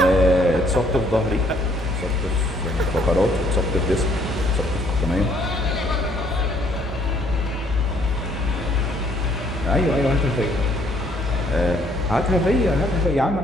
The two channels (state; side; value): normal; both; correlation 0.65